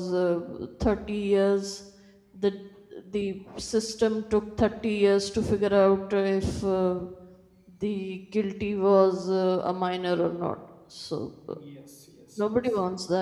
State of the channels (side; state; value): both; identical; correlation 1.00